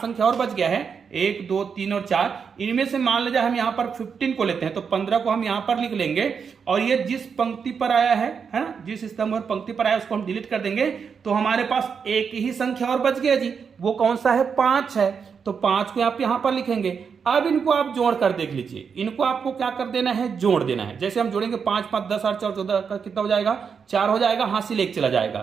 और बच गया है, 1 2 3 और 4, इनमें से मान लीजिए हम यहाँ पर 15 को लेते हैं, तो 15 को हम यहाँ पर लिख लेंगे और ये जिस पंक्ति पर आया है ना, जिस स्तंभ और पंक्ति पर आया उसको हम डिलीट कर देंगे। तो हमारे पास एक ही संख्या और बच गया जी, वो कौन सा है, 5 है। तो 5 को आप यहां पर लिखेंगे। अब इनको आप जोड़ कर देख लीजिए, इनको आपको क्या कर देना है, जोड़ देना है। जैसे हम जोड़ेंगे 5 5 10 8 4 14 का कितना हो जाएगा, 4 हो जाएगा, हासिल 1 चला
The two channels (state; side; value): quieter; left; 6.3 dB